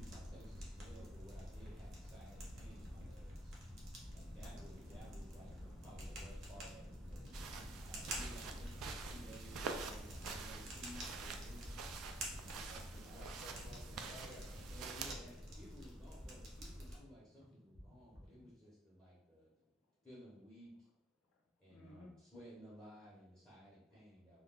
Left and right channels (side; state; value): both; normal; correlation 0.63